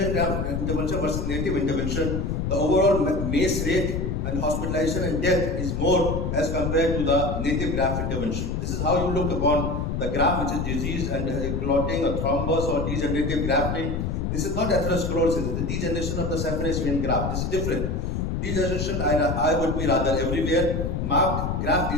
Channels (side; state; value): left; noise; rumble, 1 dB below the sound